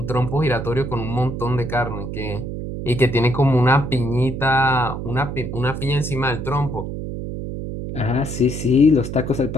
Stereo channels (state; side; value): noise; right; hum, 6 dB below the sound